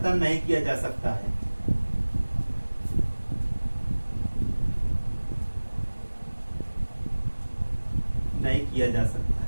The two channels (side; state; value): both; inverted; correlation -1.00